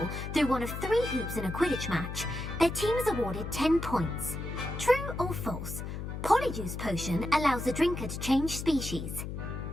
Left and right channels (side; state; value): left; noise; hum, 6 dB below the sound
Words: through one of 3 hoops in a Quidditch match, their team is awarded 10 points. True or false? Polyjuice Potion allows the drinker to change species.